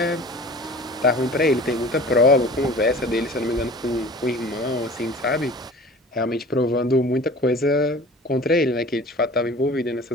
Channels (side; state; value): both; normal; correlation 0.42